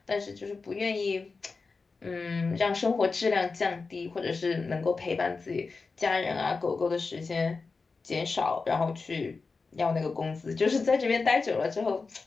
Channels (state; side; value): quieter; right; 4.3 dB